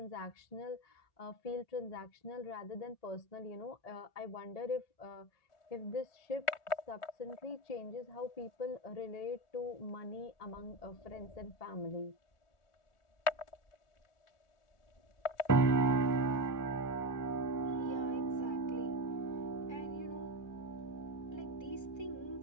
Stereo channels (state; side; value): late; right; 1.4 ms